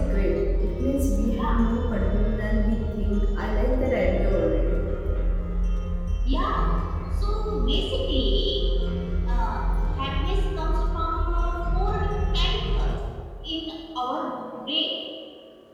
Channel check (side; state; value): both; identical; correlation 1.00